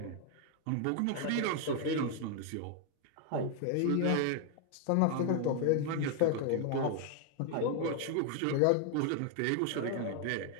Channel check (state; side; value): different; both; correlation 0.00